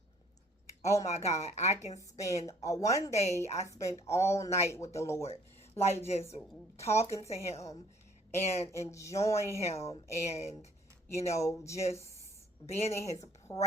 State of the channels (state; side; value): normal; both; correlation 0.59